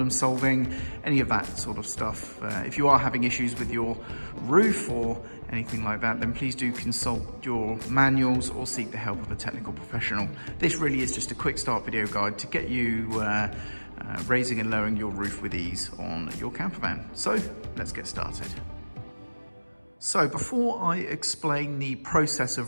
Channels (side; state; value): both; inverted; correlation -1.00